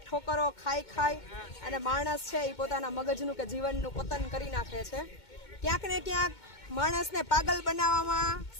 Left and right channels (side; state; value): right; late; 2.2 ms